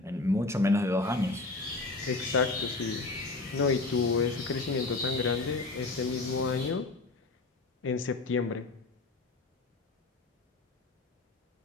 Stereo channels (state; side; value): quieter; right; 3.4 dB